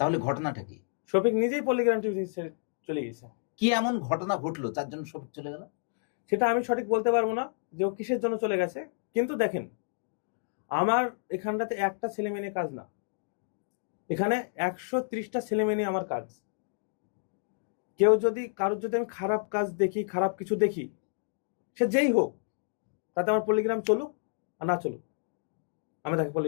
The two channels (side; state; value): right; silent; digital silence